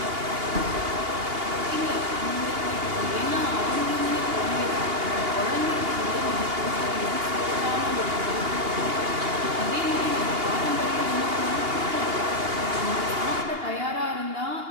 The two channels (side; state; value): left; late; 2.8 ms